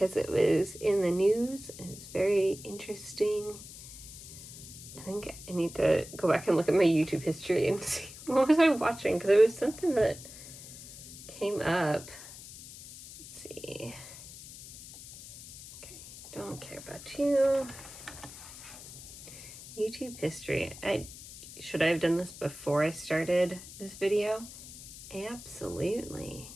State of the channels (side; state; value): left; noise; hiss, 15 dB below the sound